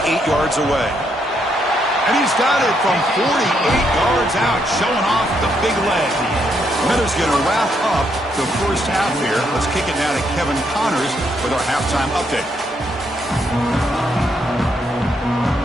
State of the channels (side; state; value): both; normal; correlation 0.76